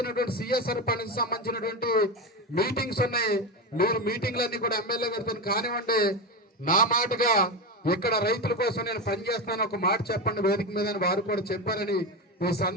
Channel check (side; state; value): both; normal; correlation 0.17